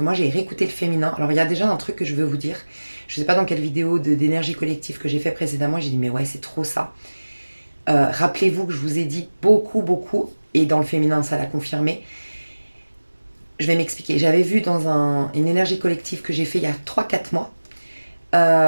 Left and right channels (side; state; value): both; inverted; correlation -1.00